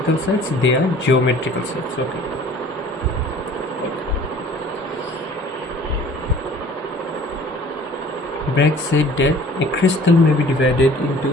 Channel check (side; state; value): both; normal; correlation 0.50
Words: sites, they are geometrical sites. Okay. Bragg said that a crystal may be divided